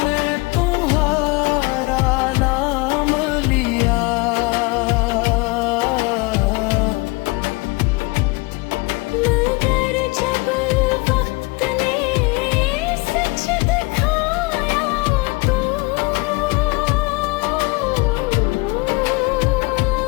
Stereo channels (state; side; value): quieter; right; 25.5 dB